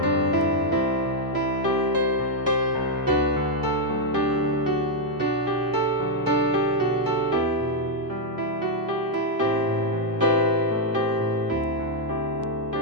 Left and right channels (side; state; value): both; normal; correlation -0.01